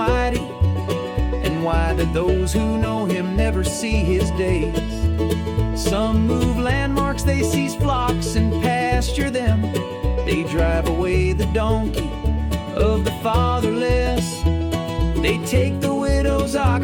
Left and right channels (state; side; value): identical; both; correlation 1.00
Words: And why do those who know him never see his days? Some move landmarks, they seize flocks and pasture them. They drive away the donkey of the fatherless. They take the widow's